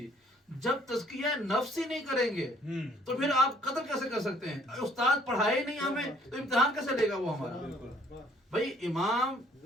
جب تزکیہ نفس ہی نہیں کریں گے تو پھر آپ قدر کیسے کر سکتے ہیں؟ استاد پڑھائے نہیں ہمیں تو امتحان کیسے لے گا وہ ہمارا؟ بھائی امام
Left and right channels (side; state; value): both; normal; correlation 0.61